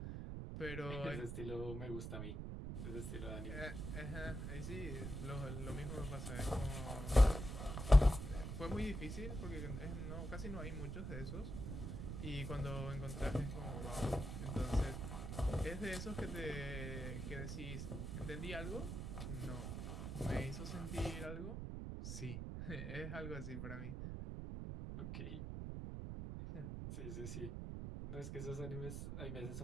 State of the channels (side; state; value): right; noise; rumble, 5 dB below the sound